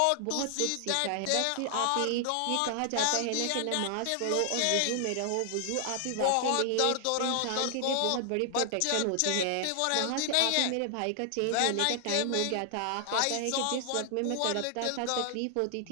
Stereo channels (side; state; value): both; different; correlation 0.00